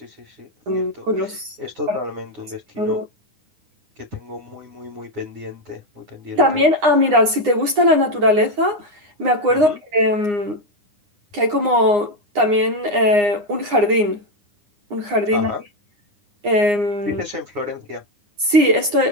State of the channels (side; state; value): left; late; 9.7 ms